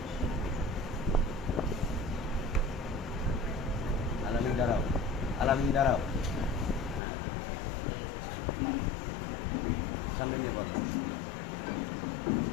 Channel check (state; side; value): drops out; right; at 7.0 s